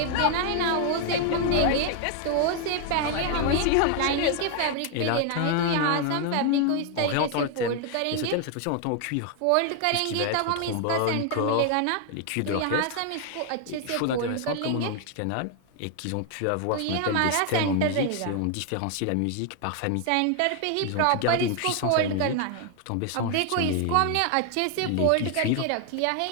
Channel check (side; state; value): both; different; correlation 0.00